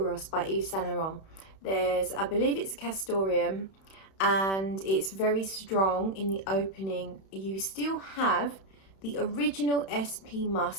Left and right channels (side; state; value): right; late; 31 ms